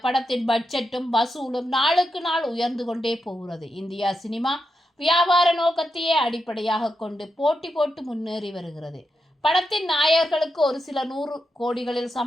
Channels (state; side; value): normal; both; correlation 0.86